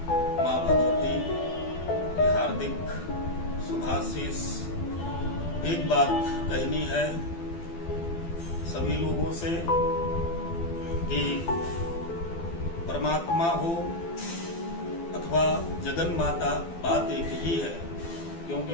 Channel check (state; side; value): late; right; 12 ms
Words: मां भगवती की हार्दिक शुभाशीष। एक बात कहनी है सभी लोगों से कि परमात्मा हो अथवा जगन माता, बात एक ही है। क्योंकि